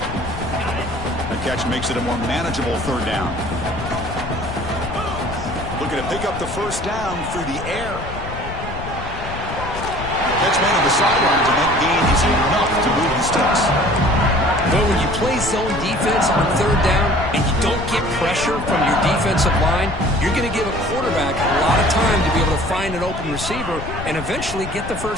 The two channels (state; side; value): noise; left; rumble, 9 dB below the sound